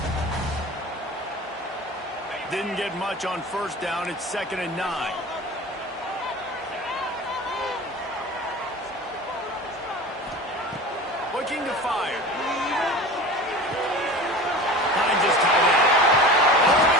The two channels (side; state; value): both; normal; correlation 0.35